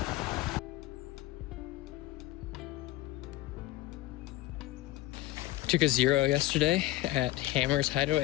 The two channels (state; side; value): quieter; right; 17.3 dB